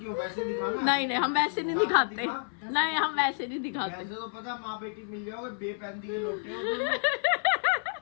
वैसे दिखाना। नहीं नहीं हम वैसे नहीं दिखाते। दिखा। नहीं हम वैसे नहीं दिखाते। वैसे तो पता माँ बेटी मिल जाओगे, बेपैंदी के लोटे हो तुम।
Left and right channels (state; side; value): silent; right; 55 dB below the other